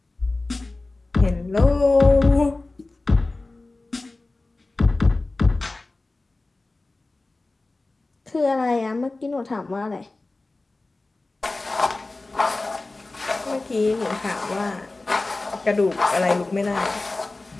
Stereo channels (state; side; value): quieter; right; 3.2 dB